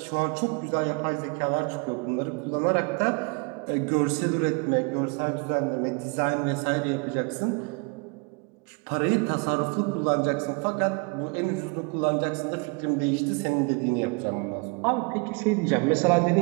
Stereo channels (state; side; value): quieter; left; 31.6 dB